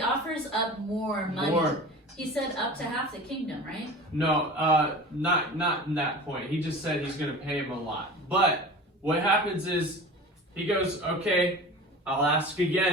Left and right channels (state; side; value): normal; both; correlation 0.37